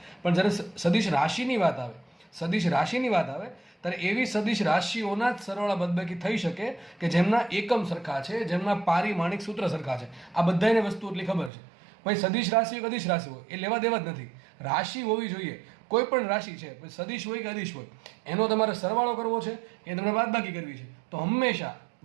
પણ જ્યારે સદિશ રાશિની વાત આવે, સદિશ રાશિની વાત આવે ત્યારે એવી સદિશ રાશિઓના જ સરવાળા બાદબાકી થઈ શકે કે જેમના એકમ સરખા છે, જેમના પારિમાણિક સૂત્ર સરખા છે. આ બધાને વસ્તુ એટલી ખબર છે. ભાઈ સદિશ રાશિ હોય કે અદિશ રાશિ હોય એ લેવા દેવા જ નથી. રાશિ હોવી જોઈએ, કોઈ પણ રાશિ છે, સદિશ હોય કે અદિશ હોય, એનો તમારે સરવાળો કરવો છે કે તમને બાદબાકી કરવી છે. તો હંમેશા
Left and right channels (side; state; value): left; drops out; at 11.5 s